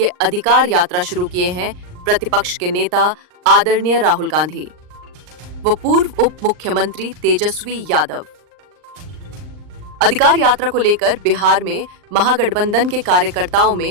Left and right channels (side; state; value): left; late; 39 ms